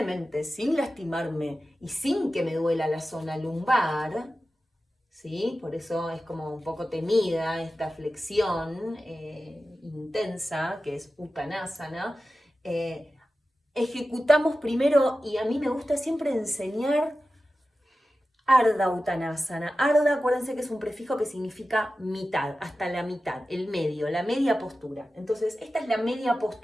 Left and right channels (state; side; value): normal; both; correlation 0.94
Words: sin lastimarme y sin que me duela la zona lumbar, ¿sí? Por eso es como un poco temida esta flexión intensa que es Uttanasana. Ejecutamos primero, y a mí me gusta siempre enseñar Ardha Uttanasana. Ardha, acuérdense que es un prefijo que significa mitad, hasta la mitad, el medio, la media postura. Entonces, esta es la media